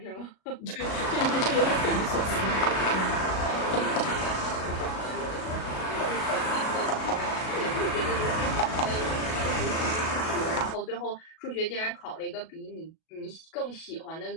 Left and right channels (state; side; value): late; right; 37 ms